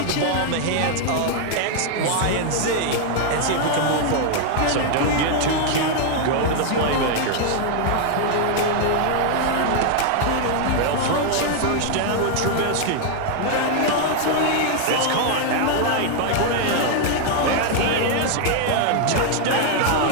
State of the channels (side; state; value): both; different; correlation 0.00